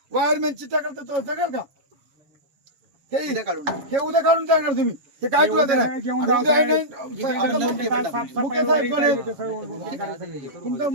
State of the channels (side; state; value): left; late; 7.3 ms